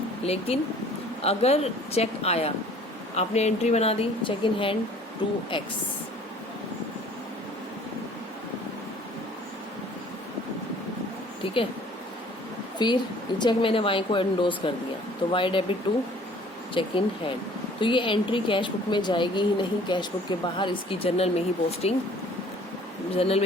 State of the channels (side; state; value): both; normal; correlation 0.53